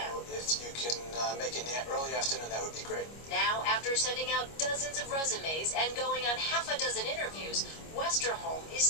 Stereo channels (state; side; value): late; right; 25 ms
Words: If you can make it in the early afternoon, that would be great. Now, after sending out dozens of resumes and going on half a dozen interviews, Westerholm